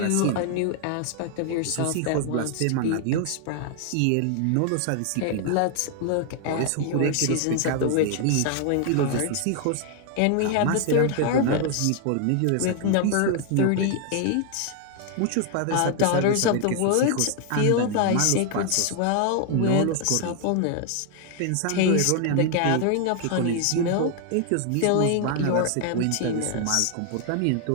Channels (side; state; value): both; different; correlation 0.00